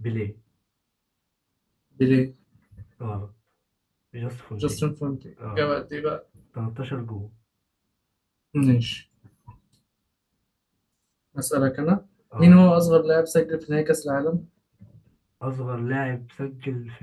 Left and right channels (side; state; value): both; identical; correlation 1.00